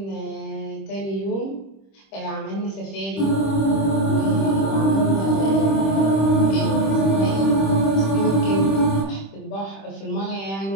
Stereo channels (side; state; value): right; late; 26 ms